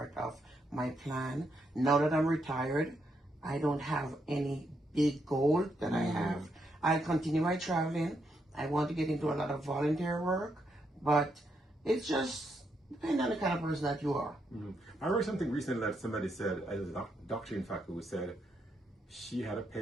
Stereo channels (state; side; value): normal; both; correlation 0.79